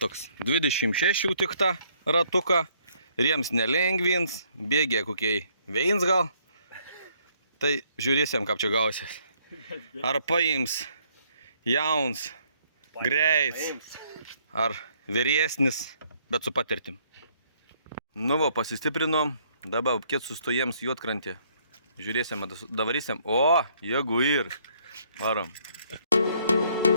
26 tik tą ratuką, riems nelengvins, bėgė kokiai veins gal. Tai žiūrėsim, kaip čia gausis. Ar paims jauns, greits, ar vyresnis, bet su patirtim. Nu va, pasistiprinom, dabar kiek sustojams Juodkrantė. Žiūrėsim, davarysim. O, jeigu ir. Varom.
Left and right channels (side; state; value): both; inverted; correlation -0.67